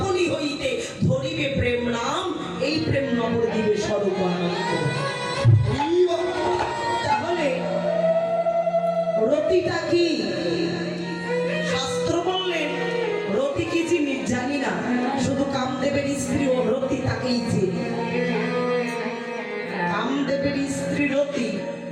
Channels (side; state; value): both; identical; correlation 1.00